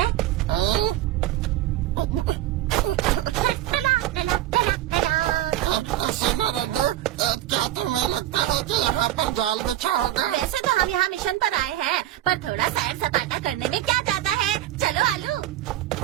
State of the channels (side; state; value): left; quieter; 13.8 dB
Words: सुनो रड्डू, क्या तुम्हें लगता है कि यहाँ पर जाल बिछा होगा? वैसे तो हम यहाँ मिशन पर आए हैं, पर थोड़ा सैर सपाटा करने में क्या जाता है। चलो आलू।